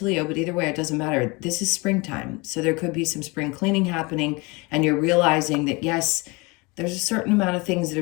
Leo, but either way, it doesn't matter. This is springtime. So there could be some spring cleaning happening, and you're realizing that, yes, there's a certain amount of things that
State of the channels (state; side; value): quieter; right; 26.2 dB